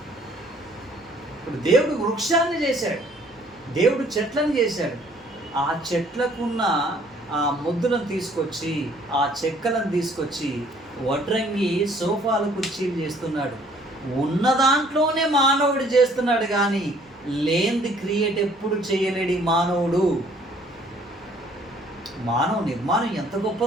ఇప్పుడు దేవుడు వృక్షాన్ని చేశాడు, దేవుడు చెట్లను చేశాడు. ఆ చెట్లకున్న ఆ ముద్దులను తీసుకొచ్చి, ఆ చెక్కలను తీసుకొచ్చి వడ్రంగి సోఫాలు కుర్చీలు చేస్తున్నాడు. ఉన్న దాంట్లోనే మానవుడు చేస్తున్నాడు, కానీ లేనిది క్రియేట్ ఎప్పుడు చేయలేడు మానవుడు. మానవ నిర్మాణం ఎంత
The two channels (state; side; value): noise; right; hum, 29 dB below the sound